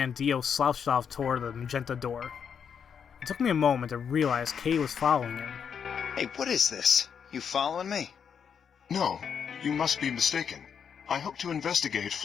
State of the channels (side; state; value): right; quieter; 7.3 dB